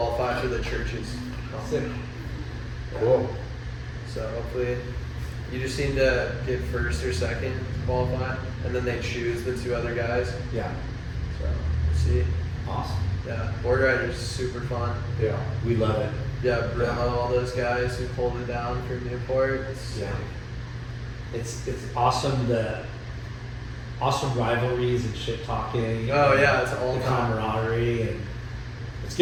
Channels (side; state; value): both; identical; correlation 1.00